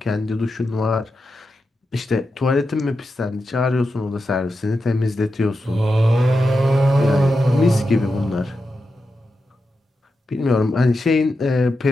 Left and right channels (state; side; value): normal; both; correlation 0.89